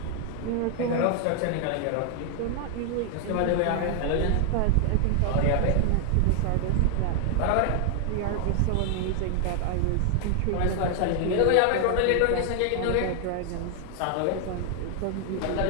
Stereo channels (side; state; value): both; different; correlation 0.00